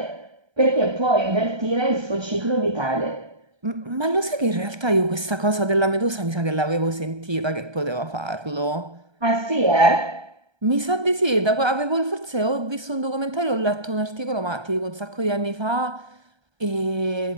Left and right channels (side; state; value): left; late; 1.3 ms